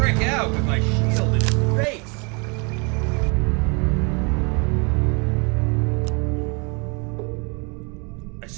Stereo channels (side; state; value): left; quieter; 32.6 dB